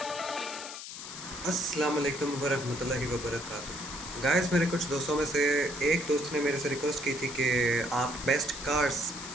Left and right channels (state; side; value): noise; left; hiss, 10 dB below the sound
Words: अस्सलाम वालेकुम वरहमतुल्लाहि वबरकातुहू। गाइस, मेरे कुछ दोस्तों में से एक दोस्त ने मेरे से रिक्वेस्ट की थी कि आप best cars